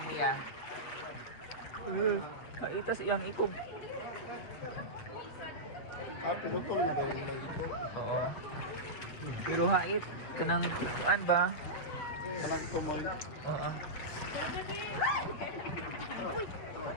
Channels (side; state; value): right; late; 8.2 ms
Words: niya. Kaitas iyang ikog. Ah, pinutol na daw yung ito. Oo. Pero hait, kanang kuan ba? Walang tumoy. Oo.